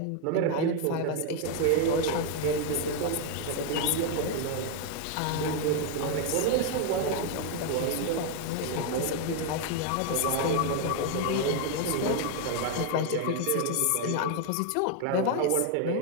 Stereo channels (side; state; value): both; different; correlation 0.01